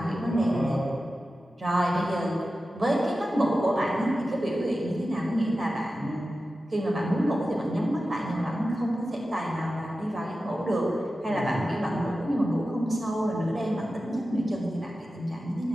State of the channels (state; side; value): normal; both; correlation 0.93